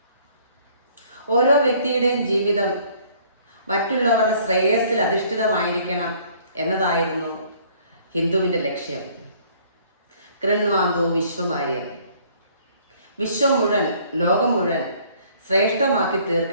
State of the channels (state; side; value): inverted; both; correlation -0.59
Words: ഓരോ വ്യക്തിയുടെയും ജീവിതം മറ്റുള്ളവരുടെ ശ്രേയസ്സിൽ അധിഷ്ഠിതമായിരിക്കണം എന്നതായിരുന്നു ഹിന്ദുവിൻ്റെ ലക്ഷ്യം. കൃണ്വാന്തോ വിശ്വമാര്യം, വിശ്വം മുഴുവൻ, ലോകം മുഴുവൻ ശ്രേഷ്ഠമാക്കി